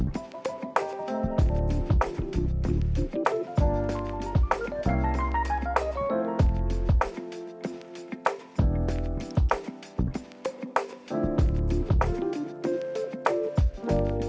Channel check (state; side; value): identical; both; correlation 1.00